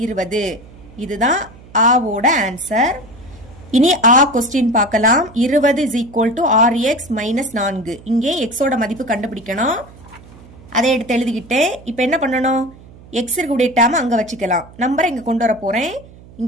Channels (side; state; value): right; noise; hum, 21 dB below the sound